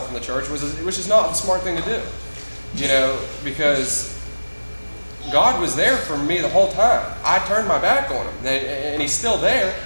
from the church, which is not the smart thing to do, because God was there for me the whole time. I turned my back on him, and he's still there,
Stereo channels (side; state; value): both; inverted; correlation -1.00